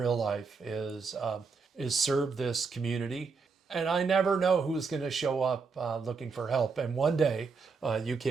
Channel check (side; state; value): left; quieter; 4.9 dB